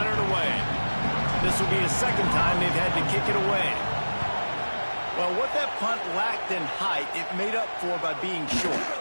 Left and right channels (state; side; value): inverted; both; correlation -1.00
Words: it away. This will be the second time they've had to kick it away. Well, what that punt lacked in height, it made up for by being short.